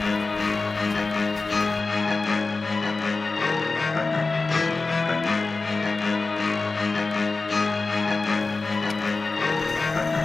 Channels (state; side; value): quieter; right; 3.8 dB